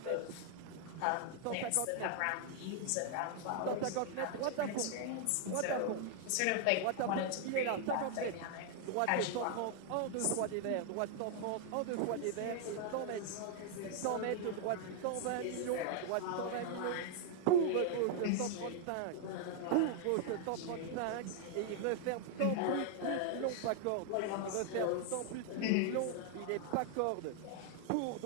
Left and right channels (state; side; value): different; both; correlation 0.00